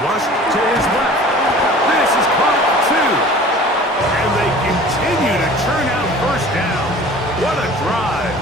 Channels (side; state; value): both; normal; correlation 0.44